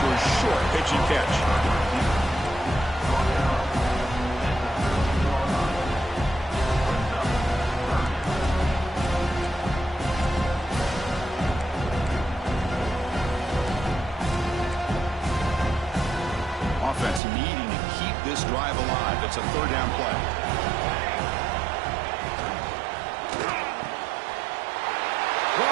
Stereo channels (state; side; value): drops out; left; at 17.2 s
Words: a short pitching catch. Offense needing to keep this drive alive. It's a third down play.